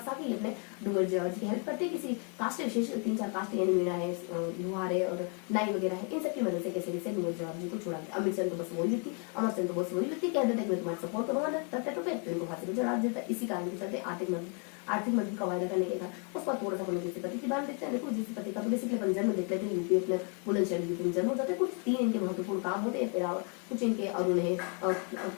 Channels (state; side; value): quieter; right; 38.4 dB